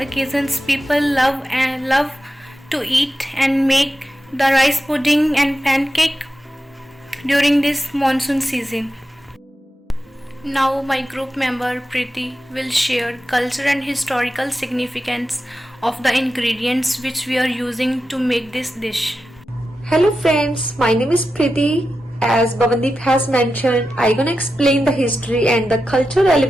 people love to eat and make the rice pudding and pancake during this monsoon season. Now my group member Preeti will share cultural and historical significance of the ingredients which we are using to make this dish. Hello friends, my name is Preeti. As Bhavandeep has mentioned, I'm gonna explain the history and the cultural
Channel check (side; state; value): both; normal; correlation 0.91